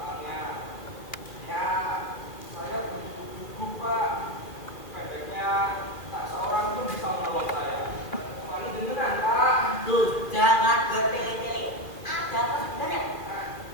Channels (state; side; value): late; right; 2.5 ms